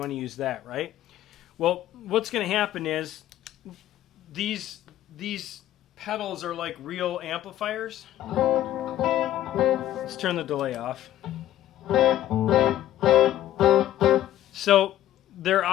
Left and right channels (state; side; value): quieter; right; 12.9 dB